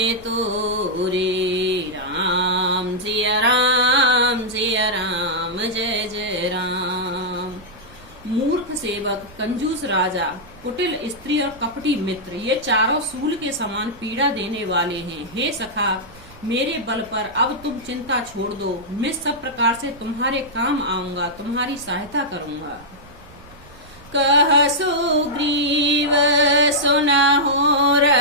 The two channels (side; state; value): right; noise; rumble, 22 dB below the sound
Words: तोरे। राम सिया राम जय जय राम। मूर्ख सेवक, कंजूस राजा, कुटिल स्त्री और कपटी मित्र, ये चारों सूल के समान पीड़ा देने वाले हैं। हे सखा, मेरे बल पर अब तुम चिंता छोड़ दो, मैं सब प्रकार से तुम्हारे काम आऊंगा, तुम्हारी सहायता करूंगा। कह सुग्रीव सुनहु